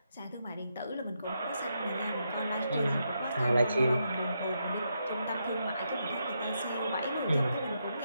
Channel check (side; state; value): both; inverted; correlation -0.82